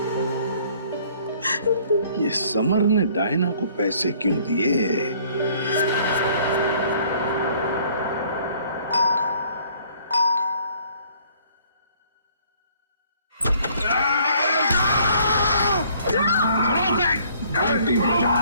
ये समर ने डायना को पैसे क्यों दिए? घंटी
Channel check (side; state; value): both; inverted; correlation -0.59